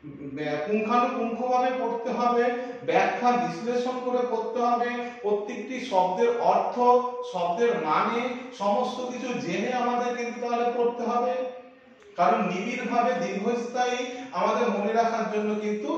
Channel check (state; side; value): identical; both; correlation 1.00